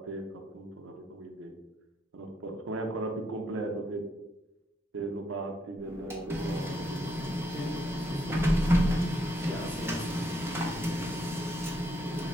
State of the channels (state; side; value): normal; both; correlation 0.76